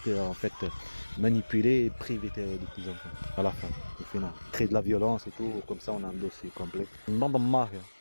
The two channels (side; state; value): both; inverted; correlation -1.00